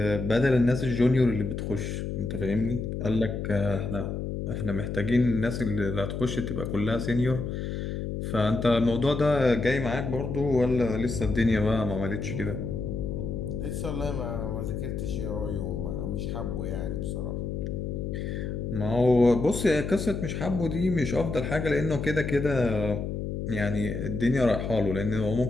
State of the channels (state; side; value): noise; left; hum, 4 dB below the sound